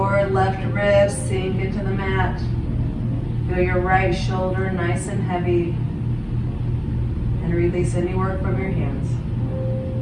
left ribs sink into the mat. Feel your right shoulder nice and heavy. And release any work from your hands.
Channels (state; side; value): identical; both; correlation 1.00